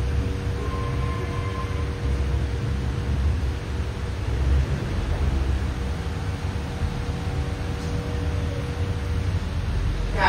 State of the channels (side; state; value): both; identical; correlation 1.00